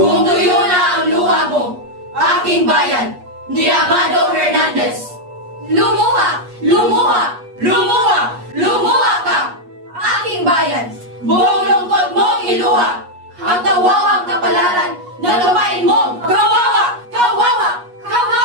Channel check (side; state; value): left; late; 8.3 ms